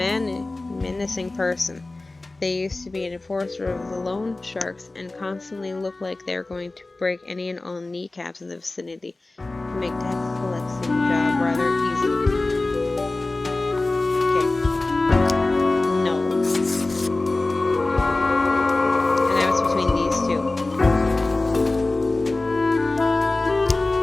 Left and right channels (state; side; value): quieter; right; 3.1 dB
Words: person. They used to be an enforcer of the loan sharks and constantly look like they're going to break any and all kneecaps in the vicinity to make tax collecting job rather easy. Okay. No. And I was between these two.